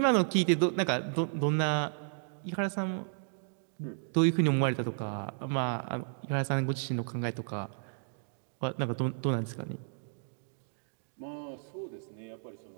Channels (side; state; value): left; silent; digital silence